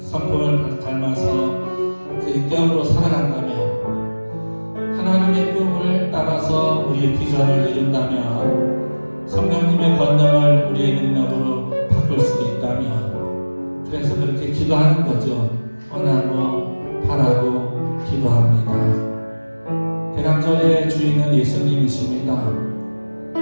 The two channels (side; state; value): both; inverted; correlation -1.00